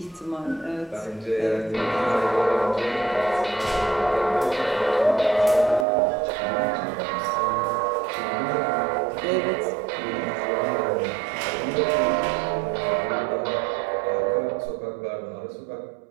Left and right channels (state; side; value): drops out; left; at 5.9 s